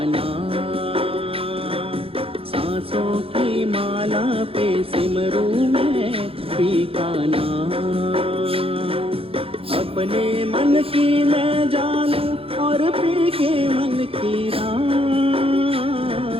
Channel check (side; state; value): left; late; 0.27 ms